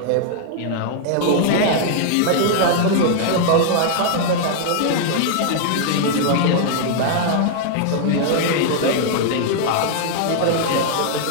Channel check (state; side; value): different; both; correlation -0.01